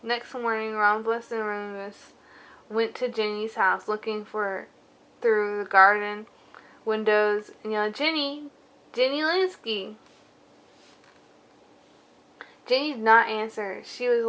Next morning, Rhombus and Remus went to Ginny's house looking for through the garden windows and yelled, Ginny! Ginny Linsky! Ginny did not answer. She was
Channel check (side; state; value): both; identical; correlation 1.00